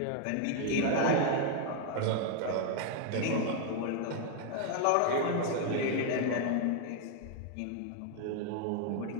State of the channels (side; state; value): both; different; correlation 0.00